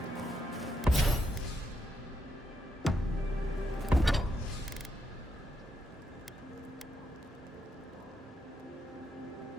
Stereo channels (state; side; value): normal; both; correlation 0.80